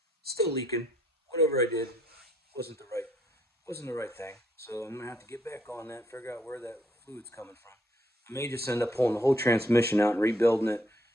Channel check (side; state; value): both; normal; correlation 0.70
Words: Still leaking. Whatever I did wasn't the right thing. So I'm gonna have to get back on that, figure out where that fluid's coming from. I may just end up pulling the whole transmission out and rebuilding it,